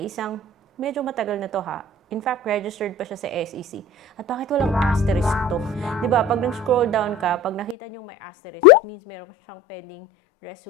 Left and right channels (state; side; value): drops out; right; at 7.8 s